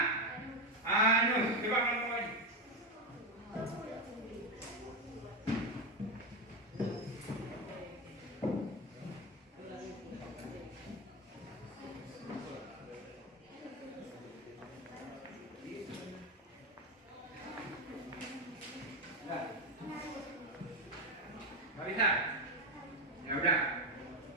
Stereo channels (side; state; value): both; normal; correlation 0.11